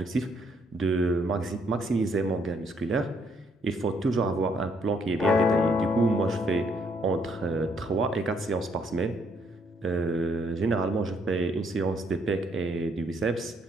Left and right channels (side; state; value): both; normal; correlation 0.70